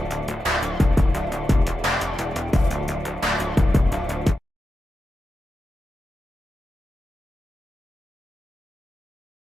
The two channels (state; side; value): normal; both; correlation 0.90